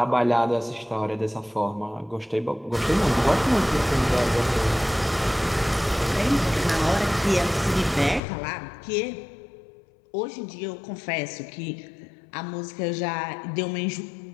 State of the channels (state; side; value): drops out; right; at 8.2 s